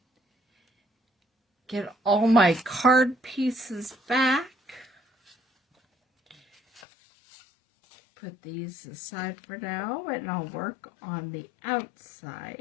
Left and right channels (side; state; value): right; drops out; at 6.8 s